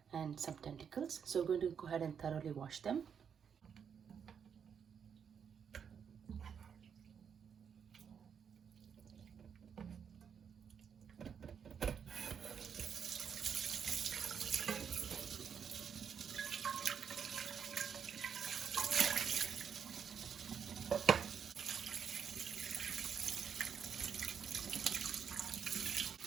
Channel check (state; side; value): quieter; left; 7.3 dB